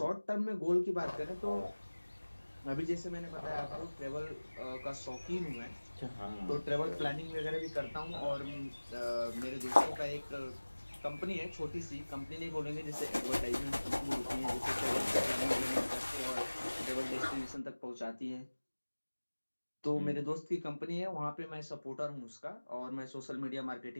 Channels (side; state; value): both; inverted; correlation -1.00